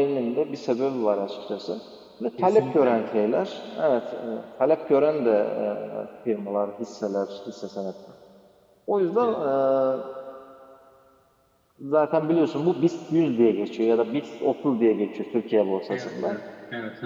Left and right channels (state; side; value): identical; both; correlation 1.00